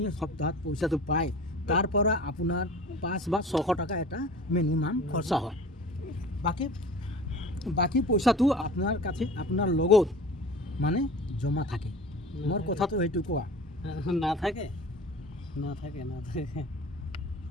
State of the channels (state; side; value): normal; both; correlation 0.40